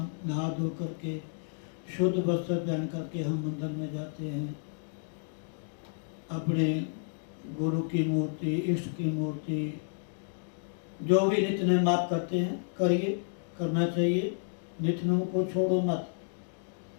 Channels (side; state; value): right; silent; digital silence